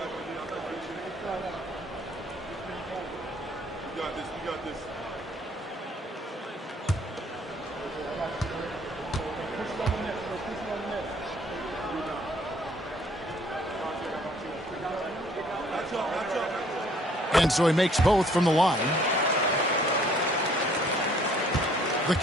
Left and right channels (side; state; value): both; normal; correlation 0.60